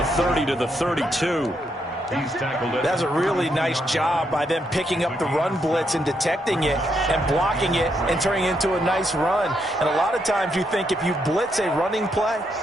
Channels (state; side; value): normal; both; correlation 0.78